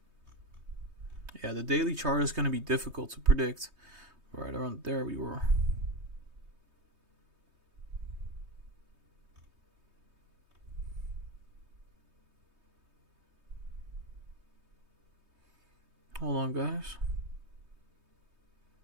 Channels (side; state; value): left; late; 3.2 ms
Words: Yeah, the daily chart is going to be difficult to predict. Right around there we were. Hold on, guys.